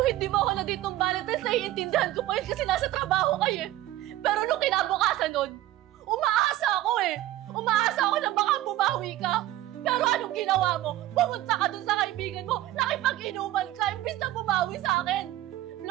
hindi mo ako na dito ng Valentine's, naiintindihan ko pa yun kasi nasa trabaho kayo eh. Pero nung kinabukasan nun, umaasa ako eh. Umaasa ako na baka bumawi ka. Pero anong ginawa mo? Pumunta ka dun sa kaibigan mo, nakipag-inuman ka, imbis na bumawi sa akin.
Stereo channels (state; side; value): quieter; left; 14.9 dB